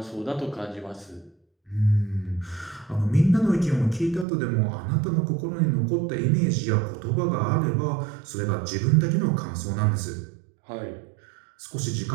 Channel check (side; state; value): left; drops out; at 4.2 s